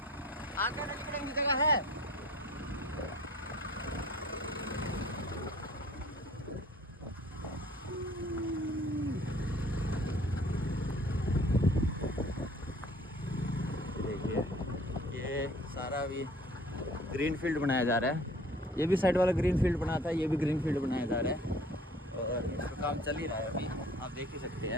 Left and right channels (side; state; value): both; normal; correlation 0.51